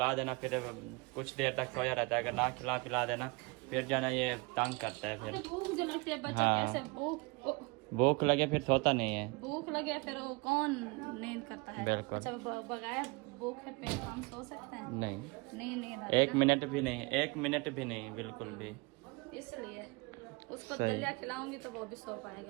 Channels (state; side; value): quieter; left; 27.5 dB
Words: देना फिर कुछ देर तक सोया रहता है अगर ना खिला पिला देना फिर जाना ये तंग करता है फिर भूख जो लगती है बच्चा हाँ। कैसे भूख लगे फिर सोता नहीं है भूख लगे फिर वो कौन नींद करता है? बिल्कुल। अच्छा बगैर भूख है पेट हम सो सकते हैं? नहीं नहीं एक मिनट भी नहीं एक मिनट भी नहीं बिल्कुल भी। इसलिए उसको दलिया खिलाऊंगी तो वो भी सो